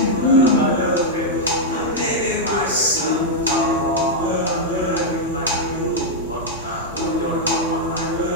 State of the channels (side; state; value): both; normal; correlation -0.03